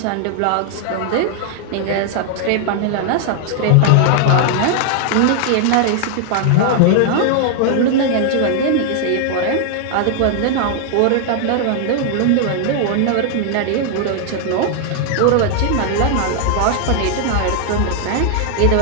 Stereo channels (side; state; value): both; different; correlation 0.00